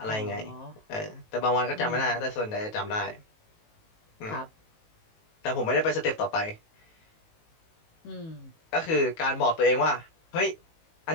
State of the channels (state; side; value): late; right; 19 ms